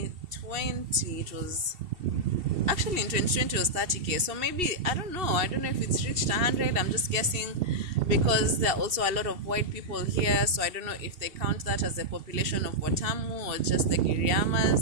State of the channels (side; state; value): left; late; 2.7 ms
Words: it was... Actually, in 2020 it was 30k. So maybe, I don't know if it's reached 100. I'm just guessing because there are also a lot of white people here. So I don't know if they count that as the population of Watamu or just the